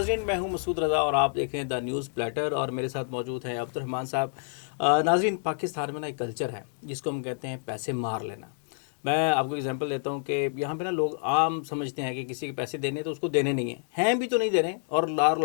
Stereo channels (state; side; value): silent; right; digital silence